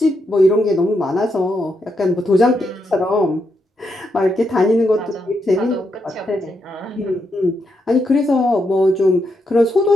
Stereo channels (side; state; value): both; normal; correlation 0.81